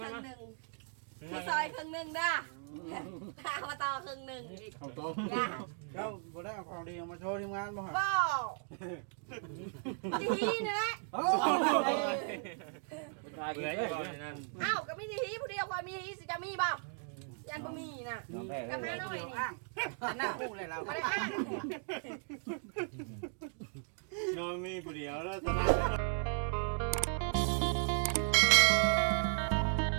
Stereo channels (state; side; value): silent; left; 54 dB below the other